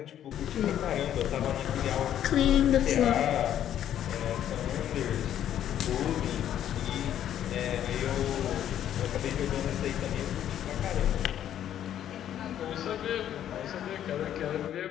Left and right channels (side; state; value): right; quieter; 10.7 dB